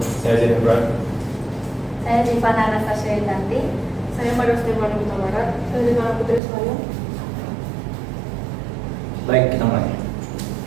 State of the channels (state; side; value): drops out; left; at 6.4 s